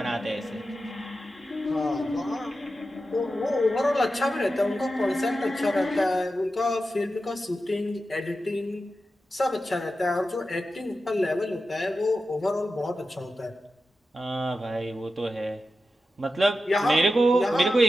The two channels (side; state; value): both; normal; correlation 0.91